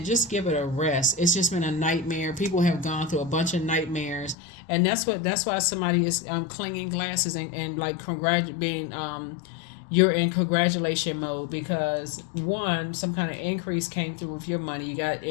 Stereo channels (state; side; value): drops out; right; at 4.4 s